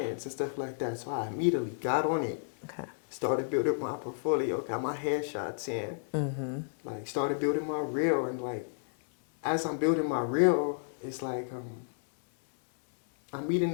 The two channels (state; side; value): silent; right; 57 dB below the other